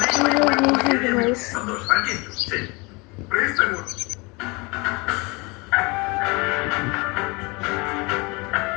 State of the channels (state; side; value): quieter; right; 26.9 dB